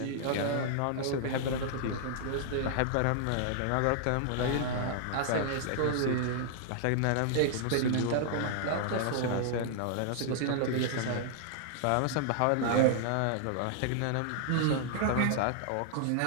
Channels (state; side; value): different; both; correlation -0.01